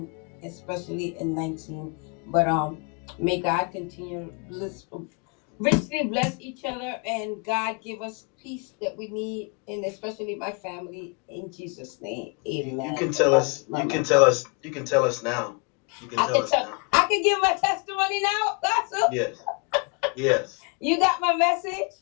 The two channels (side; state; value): right; quieter; 33.9 dB